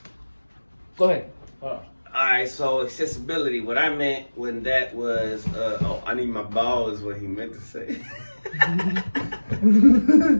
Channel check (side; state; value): both; inverted; correlation -1.00